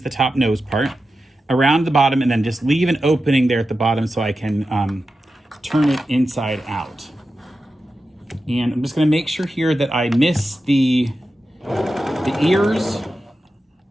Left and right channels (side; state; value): both; normal; correlation 0.91